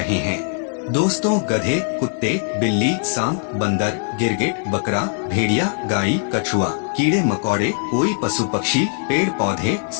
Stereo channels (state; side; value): silent; right; 56 dB below the other